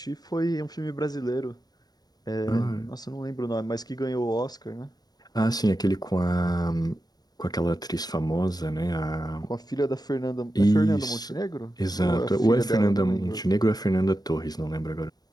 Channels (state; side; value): late; right; 0.19 ms